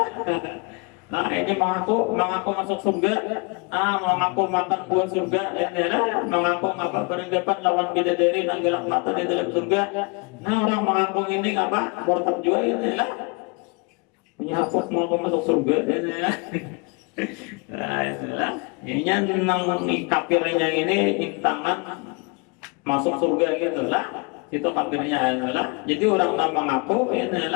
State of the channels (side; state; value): right; quieter; 31.2 dB